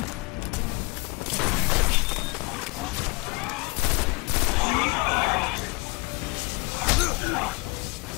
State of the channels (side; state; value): right; quieter; 27.9 dB